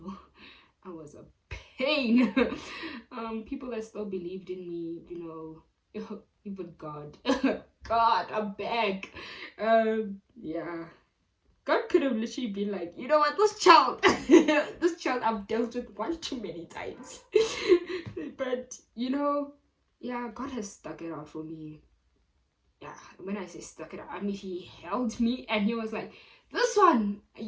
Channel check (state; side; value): identical; both; correlation 1.00